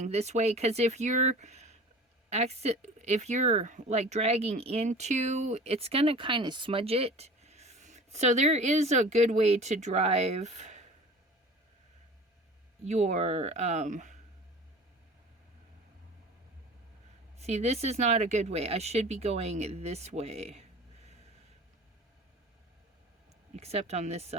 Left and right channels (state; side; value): normal; both; correlation 0.40